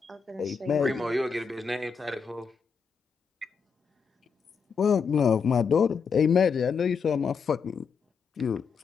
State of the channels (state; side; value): quieter; right; 5.8 dB